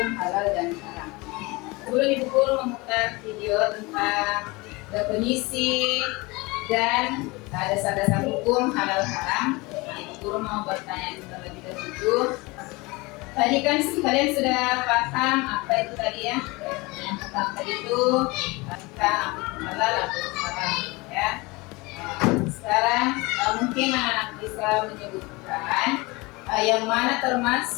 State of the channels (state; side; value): quieter; right; 24.3 dB